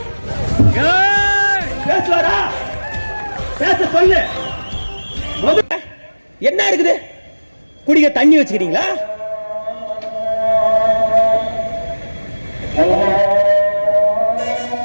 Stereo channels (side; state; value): both; inverted; correlation -1.00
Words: பேசுவாரா? பேச சொல்லு. என்ன இருக்குது? குடிக்க தண்ணி வச்சுக்கிறீங்களா?